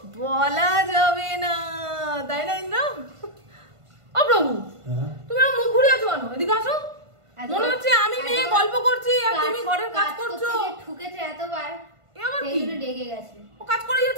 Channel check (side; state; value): left; late; 1.5 ms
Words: বলা যাবে না, তাই না ইন্দ্র? ও প্রভু, তুমি আমার মুখ ঘুরে আছো কেন? এদিকে আসো। মনে হচ্ছে আমি মেয়ে গল্প করছি আর তুমি ঘরের কাজ করছো। ঠুকেছে এতবার, এ আবার সেই কি? জন্য রেগে গেছে। ও কাজ করেই